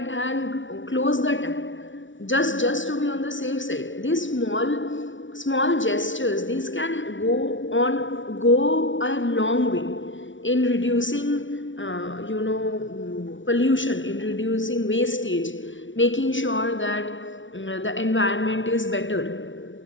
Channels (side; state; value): right; late; 0.56 ms